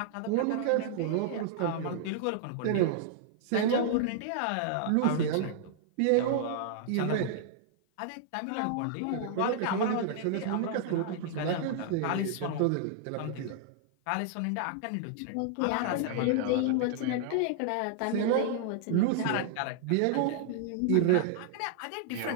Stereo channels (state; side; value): different; both; correlation -0.01